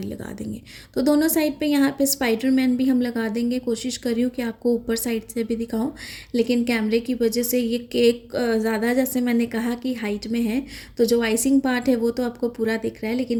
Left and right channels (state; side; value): identical; both; correlation 1.00